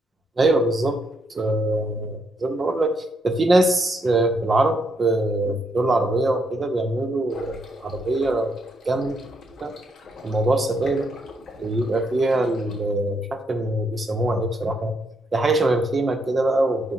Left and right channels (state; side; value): normal; both; correlation 0.76